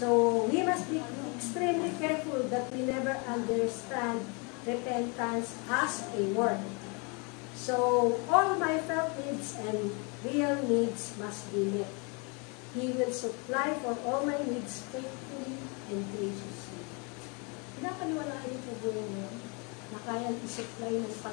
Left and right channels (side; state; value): right; quieter; 32.6 dB